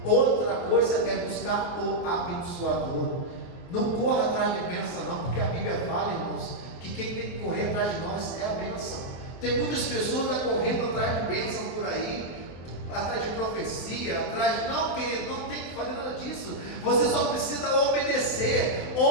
outra coisa é buscar o abençoador. Não corra atrás de bênção não, porque a Bíblia fala, irmãos, que quem tem que correr atrás de nós é a bênção. Tem muitas pessoas correndo atrás de bênção por aí, atrás de profecia, atrás, não, querido, não tem que fazer nada disso. Você só precisa obedecer.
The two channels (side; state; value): right; late; 24 ms